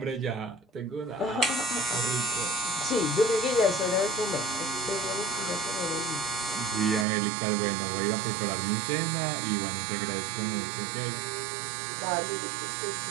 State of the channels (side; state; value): left; drops out; at 7.1 s